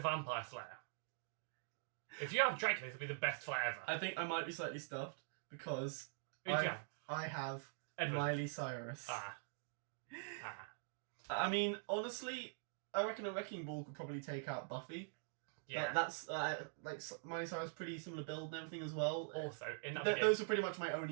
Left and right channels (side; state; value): left; silent; digital silence